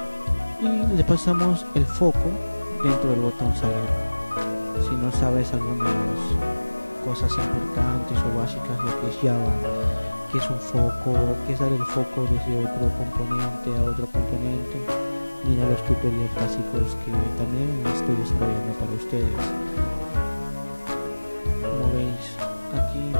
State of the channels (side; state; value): both; inverted; correlation -1.00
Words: Y le pasamos el foco dentro del botón salir. Si no sabes algunas cosas importantes o básicas, lo que es Java, que es un foco, que es dar el foco desde otro componente a otro componente, mira los tutoriales básicos que también estoy desarrollando para ustedes. Como veis, aquí me